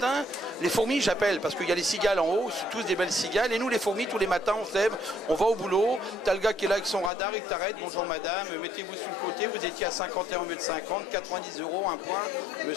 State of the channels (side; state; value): right; drops out; at 7.1 s